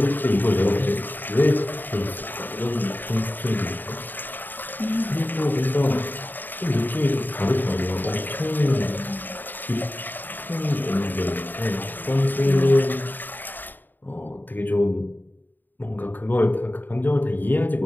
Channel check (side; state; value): right; late; 0.090 ms